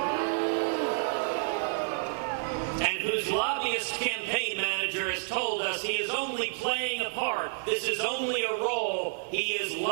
and whose lobbyist campaign manager has told us he is only playing a part, this is only a role, he is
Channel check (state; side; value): silent; left; digital silence